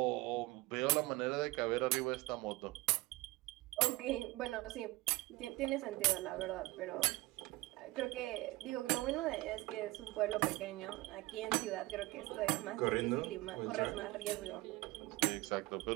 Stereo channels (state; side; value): quieter; left; 20.1 dB